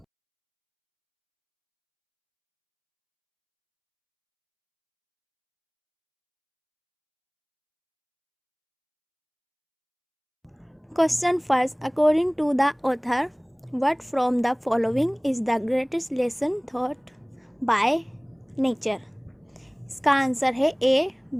Question first, according to the author what from the following is the greatest lesson thought by nature. इसका answer है A,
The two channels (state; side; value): identical; both; correlation 1.00